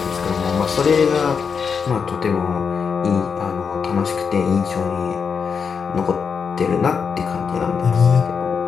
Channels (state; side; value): quieter; right; 6.1 dB